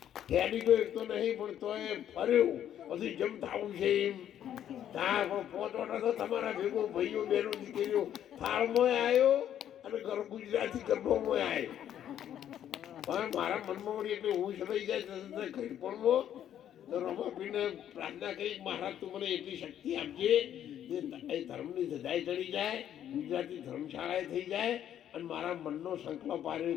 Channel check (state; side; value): quieter; right; 10.5 dB